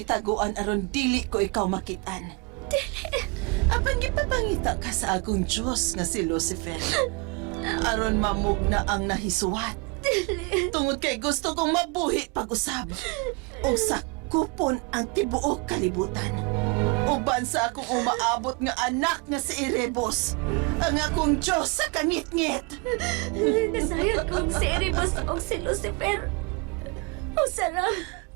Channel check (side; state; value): left; quieter; 28.9 dB